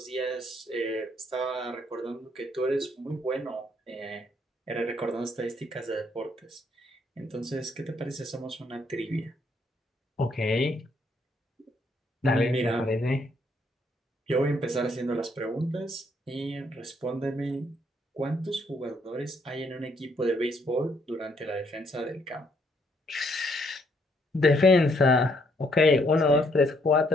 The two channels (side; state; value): both; normal; correlation 0.70